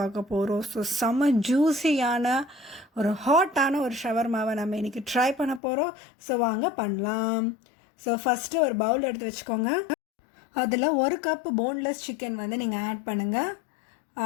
பார்க்க போகிறோம். ஸோ செம்ம ஜூஸியான ஒரு ஹாட்டான ஒரு ஷவர்மாவை நம்ம இன்றைக்கி ட்ரை பண்ண போகிறோம். ஸோ வாங்க பண்ணலாம். ஸோ ஃபஸ்ட்டு ஒரு பவுல் எடுத்து வச்சுக்கோங்க. அதில் ஒரு கப் போன்லெஸ் சிக்கன் வந்து நீங்கள் ஆட் பண்ணுங்கள்.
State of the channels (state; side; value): drops out; right; at 5.6 s